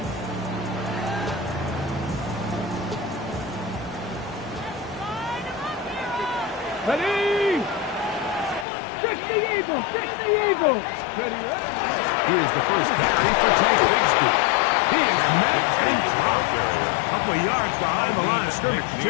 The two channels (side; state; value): right; drops out; at 8.7 s